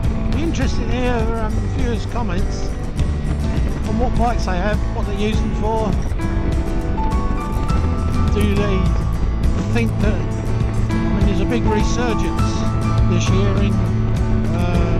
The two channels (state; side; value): identical; both; correlation 1.00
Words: Be interesting to hear viewers' comments on what bikes they have, what they use them for. Do they think that, I mean, there's a big resurgence this year in